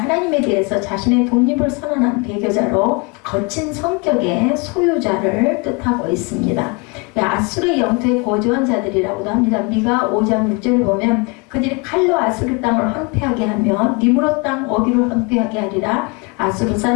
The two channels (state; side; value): quieter; right; 29.2 dB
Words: 대해서 자신의 독립을 선언한 배교자로 거친 성격의 소유자를 뜻하고 있습니다. 아수르의 영토에 거주한 자들이라고도 합니다. 미가 5장 6절에 보면 그들이 칼로 아수르 땅을 황폐하게 하며 니무롯 땅 어귀를 황폐하게 하리라. 아수르